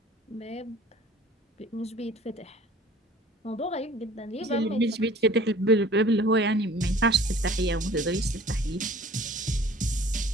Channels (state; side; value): normal; both; correlation 0.49